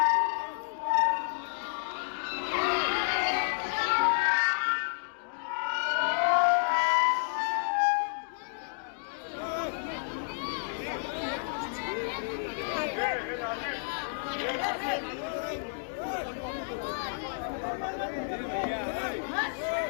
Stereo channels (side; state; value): right; silent; digital silence